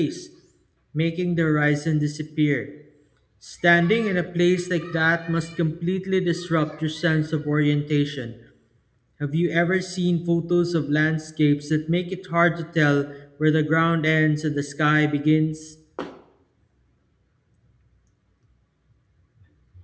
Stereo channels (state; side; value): identical; both; correlation 1.00